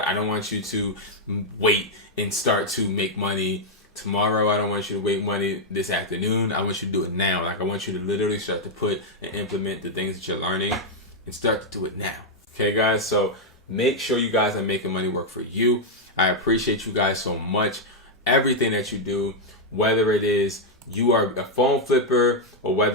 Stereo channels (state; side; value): normal; both; correlation -0.01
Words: don't want you to wait and start to make money tomorrow. I don't want you to wait money this afternoon. I want you to do it now. Like, I want you to literally start to put and implement the things that you're learning and start to do it now. Okay, guys? So Make sure you guys are making money work for you. I appreciate you guys so much. Everything that you do, whether it is you are a phone flipper or